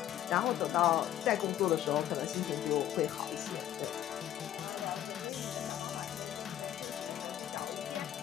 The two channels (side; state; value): right; quieter; 11.9 dB